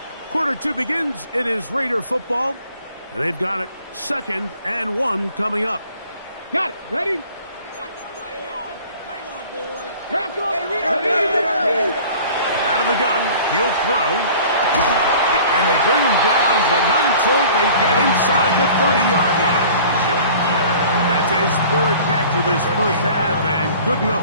Quarter 2 begins. It is Raider football. And they've got it 2nd and 1 coming up. Got it. Ready? Out of the gun. He'll throw. And they bring him down, but not until they get inside the 30-yard line. That's his 3rd catch of this 1st half, and good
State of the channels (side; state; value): both; inverted; correlation -0.47